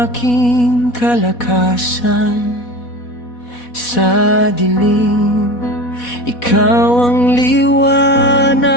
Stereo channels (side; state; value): right; late; 4.1 ms